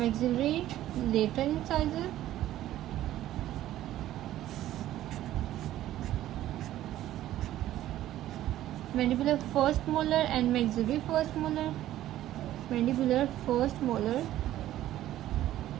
lateral incisor, mandibular first molar and maxillary first molar, mandibular first molar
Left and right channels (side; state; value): left; quieter; 13.6 dB